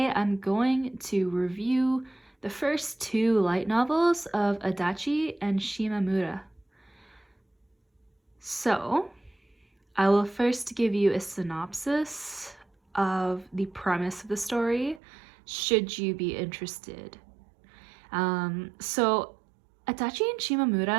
I'm going to review the first 2 light novels of Adachi and Shimamura. So, I will first give you a synopsis of the premise of the story, should you be interested. So, Adachi and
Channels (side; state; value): left; drops out; at 15.0 s